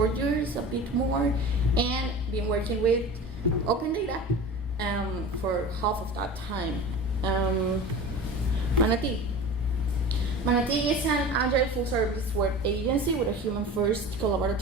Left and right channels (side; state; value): both; normal; correlation 0.35